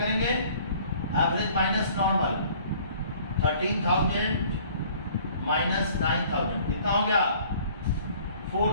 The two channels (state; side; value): inverted; both; correlation -0.54